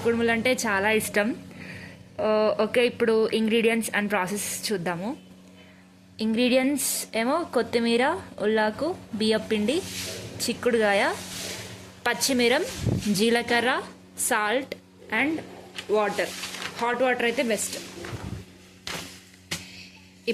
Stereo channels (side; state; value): both; identical; correlation 1.00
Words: కుడుములు అంటే చాలా ఇష్టం. ఓకే, ఇప్పుడు ఇంగ్రీడియంట్స్ అండ్ ప్రాసెస్ చూద్దాము. ఇంగ్రీడియంట్స్ ఏమో కొత్తిమీర, ఉల్లాకు, బియ్యపిండి, చిక్కుడుగాయ, పచ్చిమిరం, జీలకర్ర, salt and water. Hot water అయితే బెస్ట్.